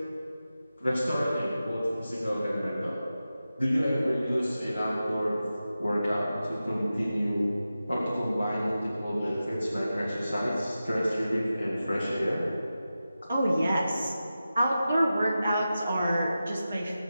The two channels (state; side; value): inverted; both; correlation -0.93